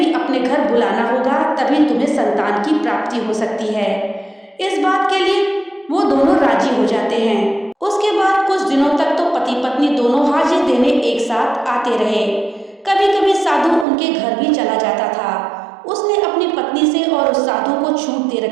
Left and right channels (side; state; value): left; drops out; at 13.9 s